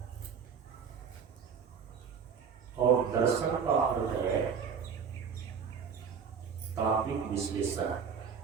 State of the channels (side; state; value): left; quieter; 6.6 dB